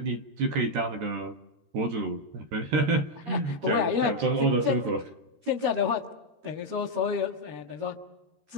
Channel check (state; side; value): late; left; 13 ms